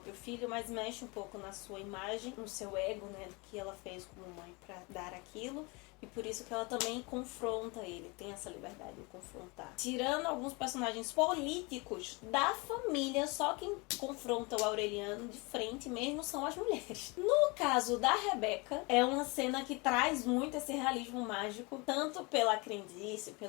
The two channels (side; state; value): right; quieter; 27.8 dB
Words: filho, mas mexe um pouco na sua imagem, no seu ego, né, do que ela fez como mãe para dar aquilo. E por isso que ela também confronta ele, tem essa liberdade de confrontar. Tirando alguns personagens políticos da família, só quem confronta o Aureliano de frente mesmo são as mulheres. No caso da Rebeca, é uma cena que traz muito esse realismo mágico, tanto pela crendice,